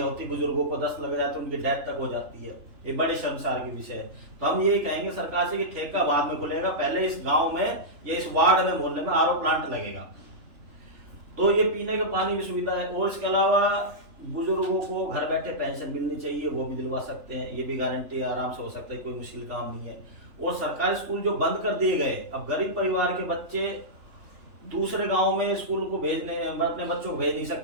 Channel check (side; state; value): left; late; 3.4 ms